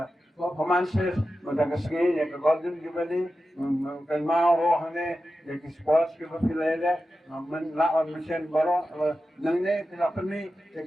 performances mentang kesini ya ke Golden Jubilee kan mau rohane ya ki sports ki batilai men lawan mesin baro nangne tidak peni ya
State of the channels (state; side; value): normal; both; correlation 0.92